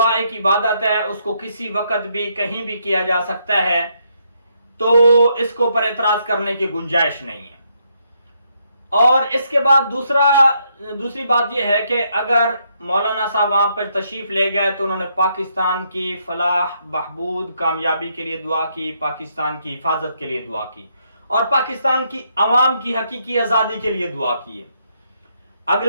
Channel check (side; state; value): both; inverted; correlation -0.75